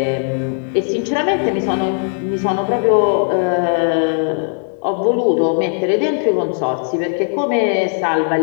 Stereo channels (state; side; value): silent; right; 57 dB below the other